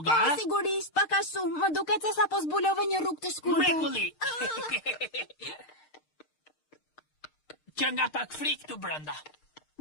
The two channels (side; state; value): right; late; 6.5 ms